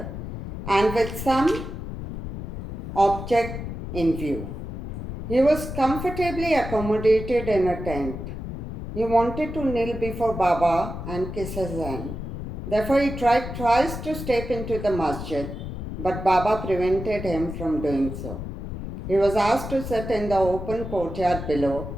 and with some object in view. He was comfortably accommodated in a tent. He wanted to kneel before Baba and kiss his hand. Therefore, he tried twice to step into the masjid, but Baba prevented him from doing so. He was asked to sit in the open courtyard below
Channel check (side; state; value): left; noise; rumble, 7 dB below the sound